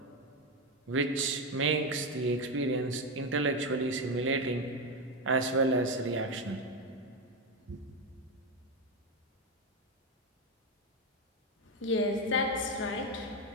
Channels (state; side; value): normal; both; correlation 0.11